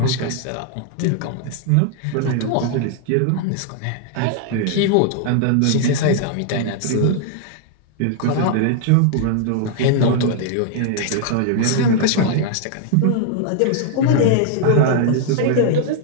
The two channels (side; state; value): both; different; correlation 0.00